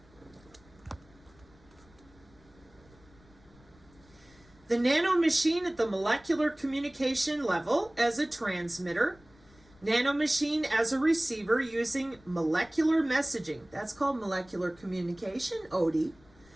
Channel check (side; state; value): left; noise; rumble, 27 dB below the sound